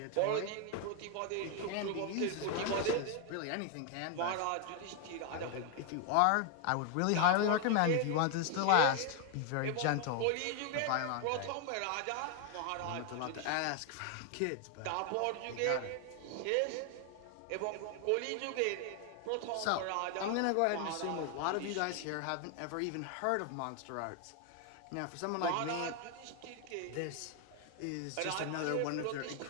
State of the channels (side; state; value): both; different; correlation 0.00